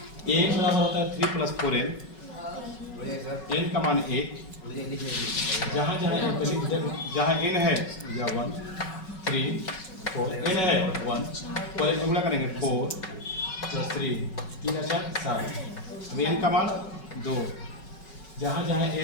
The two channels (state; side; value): late; right; 5.4 ms